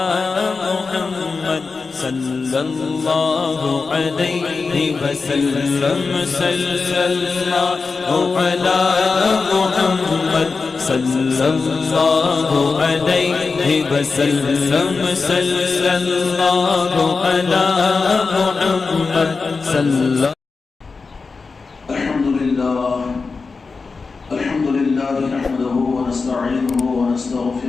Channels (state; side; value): quieter; right; 4.4 dB